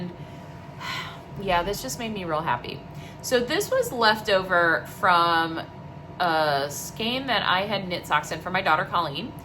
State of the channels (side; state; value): both; identical; correlation 1.00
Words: yeah, this just made me real happy. So this was left over from a skein that I had knit socks in for my daughter Colleen.